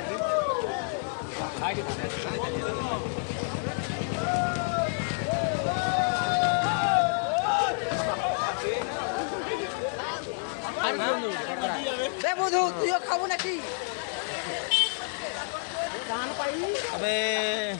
বধু তুইও খাবো নাকি?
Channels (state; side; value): silent; right; 59 dB below the other